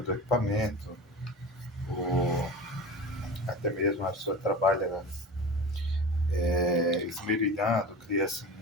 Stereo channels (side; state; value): both; normal; correlation 0.31